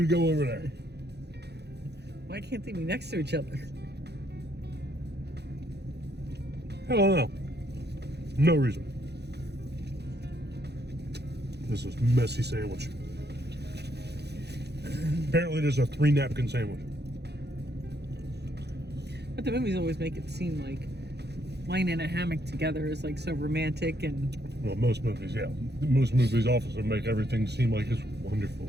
to go over there. Why can't they be next to each other? I don't know. No reason. This is messy sandwich. Apparently there's a 3 napkin sandwich. But the movies always make it seem like lying in a hammock together is like so romantic and... Well, most movies, yeah. Most movies also make everything seem like it's wonderful.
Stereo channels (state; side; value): late; left; 0.48 ms